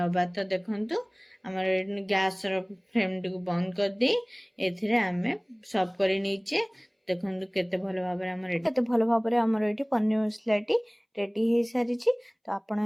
तो देखंतु हमर गैस रो फ्लेम टी को बंद कर दे एथिरे आमे सर्व करी नीचे। देखंतु केते भलो भाबरे हमर एठी पनीर मसलाटी रेडी हो सारी छी। तो आपण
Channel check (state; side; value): identical; both; correlation 1.00